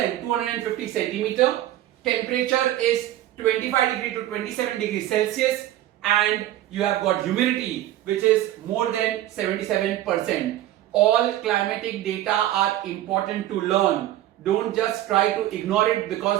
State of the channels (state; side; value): quieter; left; 13.7 dB